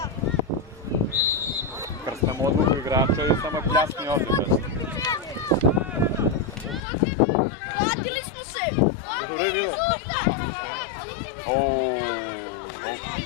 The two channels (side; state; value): right; drops out; at 6.8 s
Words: Krstam odluku igrača i samo pljasni ovdje, znaš. Vratili smo se! Dobro je bilo?